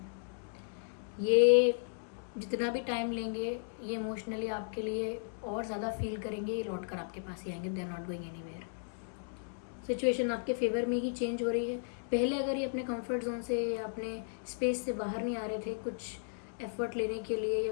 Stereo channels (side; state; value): right; silent; digital silence